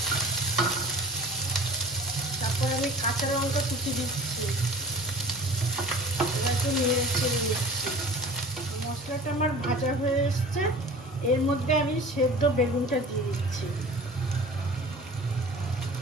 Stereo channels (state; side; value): normal; both; correlation 0.42